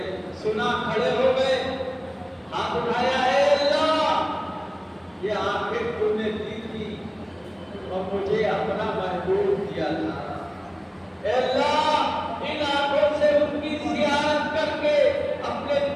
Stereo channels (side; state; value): both; identical; correlation 1.00